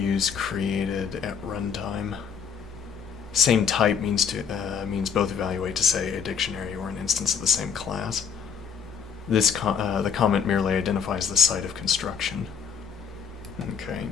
created at runtime. Same type means both evaluate to say a dictionary or an instance of the same class. The comment merely identifies the site of construction. Okay,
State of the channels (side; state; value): right; quieter; 6.9 dB